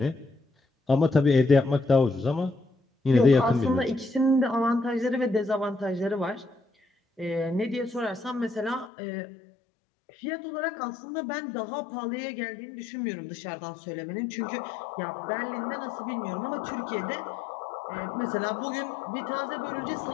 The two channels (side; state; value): right; drops out; at 8.9 s